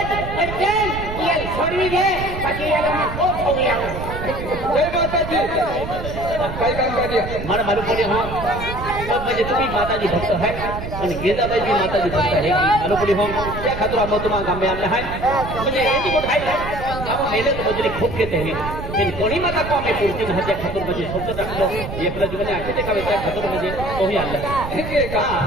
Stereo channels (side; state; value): right; noise; rumble, 8 dB below the sound